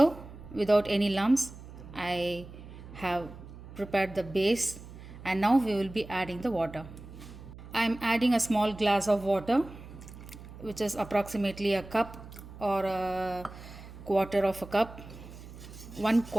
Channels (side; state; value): right; noise; hum, 15 dB below the sound